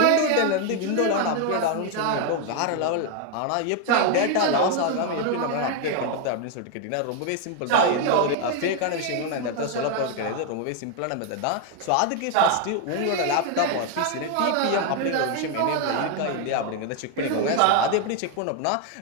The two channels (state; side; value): different; both; correlation 0.01